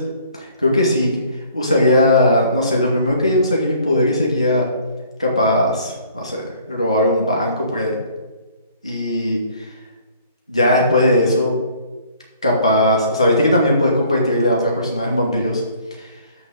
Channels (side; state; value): both; inverted; correlation -0.57